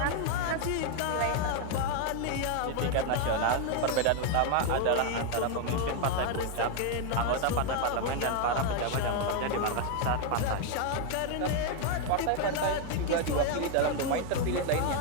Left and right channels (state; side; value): different; both; correlation 0.01